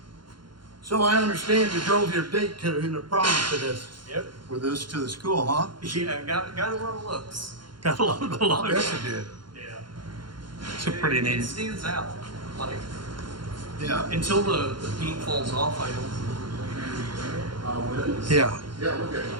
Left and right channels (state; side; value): late; left; 0.72 ms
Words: So I understand you drove your date in the prom to this, Yep. with this to the school, huh? Yeah, got a lot of looks. Got a lot of I bet you did. Yeah. It's a pretty It neat. stands out. Like, Yeah. until the paint falls off, I don't. Yeah. Yeah, look at it.